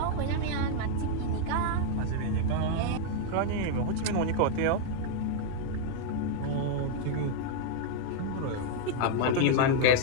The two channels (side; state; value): both; different; correlation 0.00